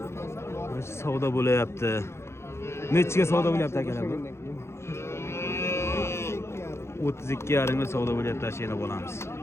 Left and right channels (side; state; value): right; late; 0.13 ms